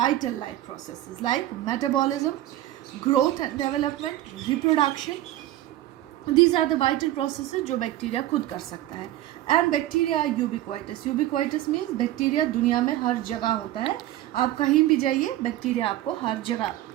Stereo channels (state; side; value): quieter; left; 14.4 dB